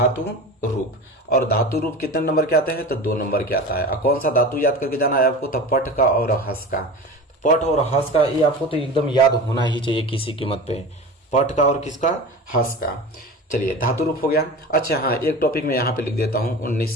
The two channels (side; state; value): both; normal; correlation 0.32